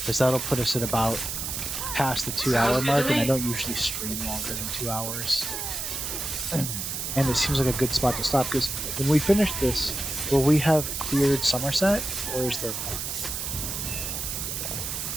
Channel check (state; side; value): noise; right; hiss, 4 dB below the sound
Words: that'll put us at about past the 2-hour mark, and I don't usually stream longer than 2 hours. And it seems like a good spot to stop, because when we finish this, will we have cleared Somerset, or is there more?